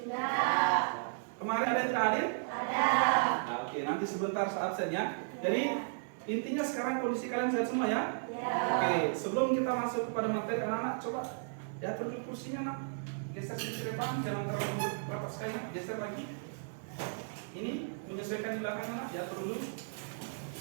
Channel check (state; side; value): silent; left; digital silence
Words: Kemarin ada yang tidak hadir? Ada. Nah, oke, nanti sebentar saat absen ya. Jadi intinya sekarang kondisi kalian sehat semua ya? Ya. Oke, sebelum kita masuk kepada materi anak-anak, coba ya duduk kursinya nak. Geser sedikit depan, jangan terlalu rapat sekali, nak. Geser lagi. Ini menyesuaikan di belakang anak, ya dulu.